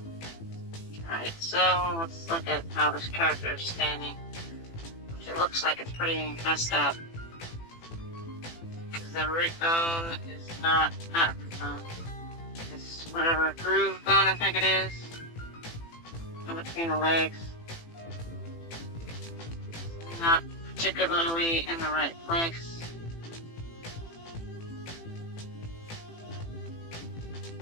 Alright, so let's look at how this character is standing. Which it looks like it's pretty messed up. Because the root bone is not root bone. It's whatever groove bone I think it is. In between the legs. Not particularly in the right place.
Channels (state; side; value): late; right; 18 ms